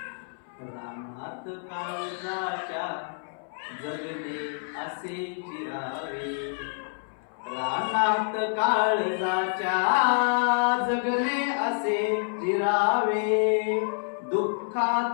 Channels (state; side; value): silent; right; 60 dB below the other